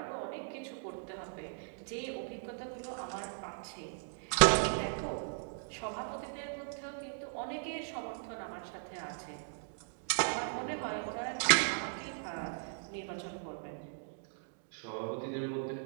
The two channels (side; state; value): left; silent; digital silence